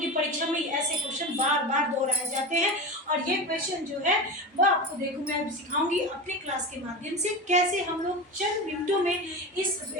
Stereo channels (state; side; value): normal; both; correlation 0.25